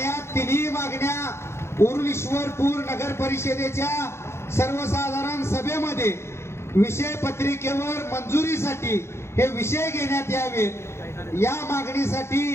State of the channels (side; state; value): right; late; 0.13 ms